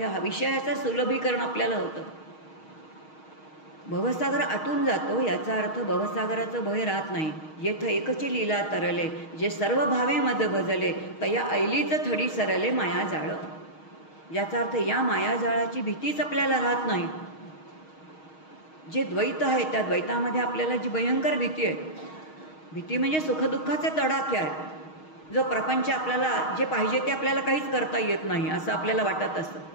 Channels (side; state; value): right; late; 6.4 ms